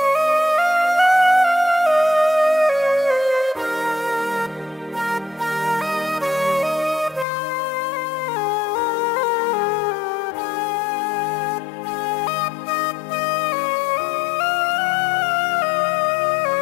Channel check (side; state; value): right; drops out; at 7.2 s